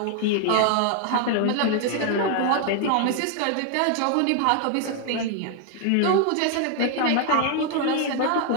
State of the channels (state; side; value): different; both; correlation 0.00